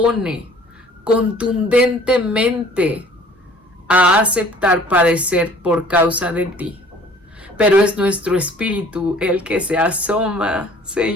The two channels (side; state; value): both; normal; correlation 0.52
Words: contundentemente a aceptar padecer por causa de ti. Pero es nuestro espíritu el que se asoma,